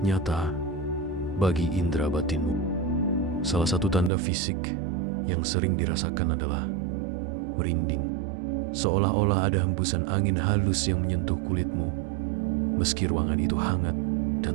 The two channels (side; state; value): left; drops out; at 4.1 s